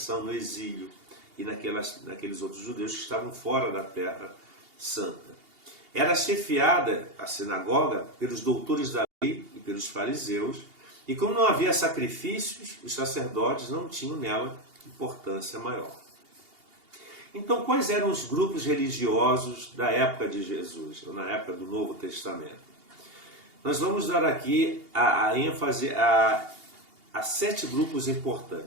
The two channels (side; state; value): left; late; 2.8 ms